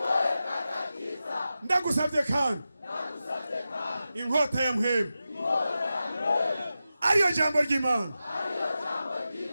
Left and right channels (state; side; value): inverted; both; correlation -0.92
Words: ndagusabye kandi inkota ya mpwemu ariyo jambo ry'Imana